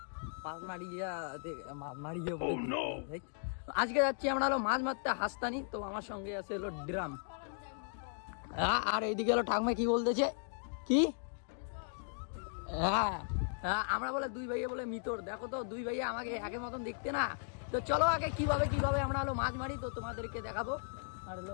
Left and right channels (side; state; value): right; silent; digital silence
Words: মাছ মারিয়ে আজকে যাচ্ছি আমরা হলো মাছ মারতে হাসতানি। তো আমার সঙ্গে আছে হলো ড্রাম, আর এইদিকে হলো ঠাকমা কি বলতেছে কি, হ্যাঁ আমরা বলে দুই ভাইয়া বলে মিতর, দেখো তো দুই ভাইয়া আমাকে একের মতন দেখতে না। তো চলো আগে কিভাবে আমরা হলো মাছ মারি তো তোমাদেরকে দেখাবো। আর হলো